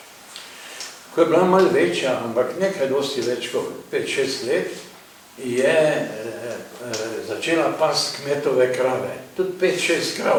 Ko je bila malo večja, ampak nekaj dosti več kot 5-6 let, je začela past kmetove krave. Tudi 5-6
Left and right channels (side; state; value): both; identical; correlation 1.00